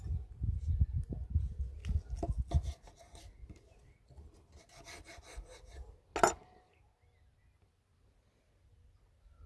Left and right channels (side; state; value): both; identical; correlation 1.00